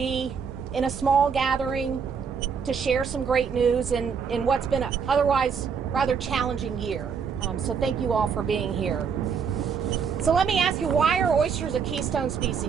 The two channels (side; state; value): left; quieter; 6.3 dB